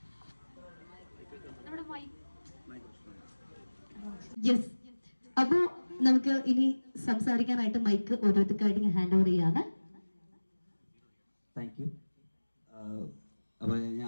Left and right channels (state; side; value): inverted; both; correlation -1.00